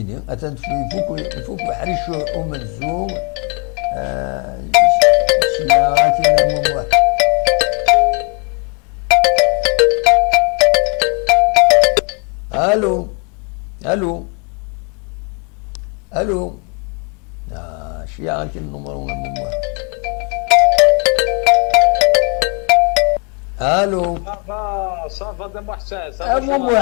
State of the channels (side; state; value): right; quieter; 35.8 dB